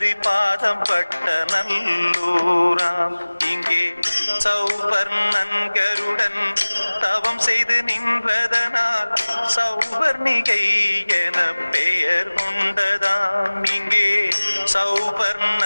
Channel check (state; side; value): inverted; both; correlation -1.00